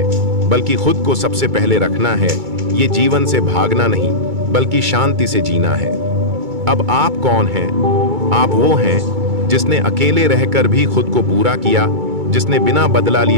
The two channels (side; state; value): left; late; 2.3 ms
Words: बल्कि खुद को सबसे पहले रखना है। ये जीवन से भागना नहीं, बल्कि शांति से जीना है। अब आप कौन हैं? आप वो हैं जिसने अकेले रहकर भी खुद को पूरा किया, जिसने बिना बदला